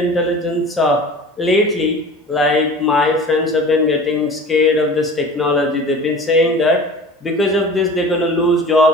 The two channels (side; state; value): both; normal; correlation 0.40